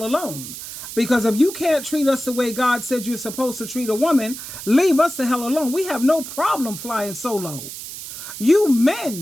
alone. Because if you can't treat us the way God said you're supposed to treat a woman, leave us the hell alone. We have no problem flying solo. You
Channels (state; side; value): noise; right; hiss, 10 dB below the sound